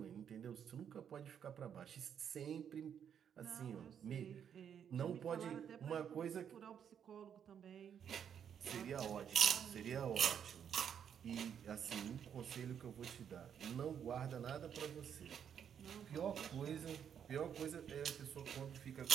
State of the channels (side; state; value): left; quieter; 8.4 dB